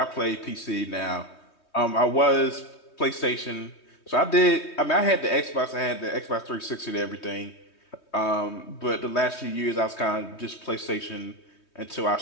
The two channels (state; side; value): late; right; 3.2 ms